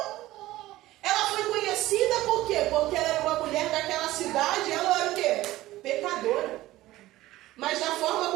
Ela foi conhecida por quê? Porque ela era uma mulher daquela cidade. Ela era o quê? Pecadora. Mas da forma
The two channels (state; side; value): quieter; left; 16.6 dB